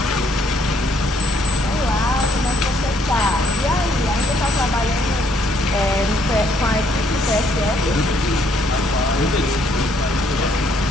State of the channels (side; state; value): both; normal; correlation 0.69